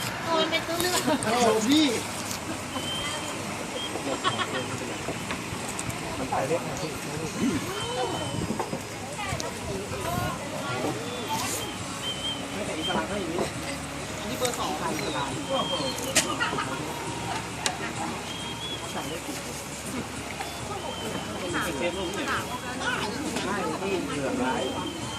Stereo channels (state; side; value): identical; both; correlation 1.00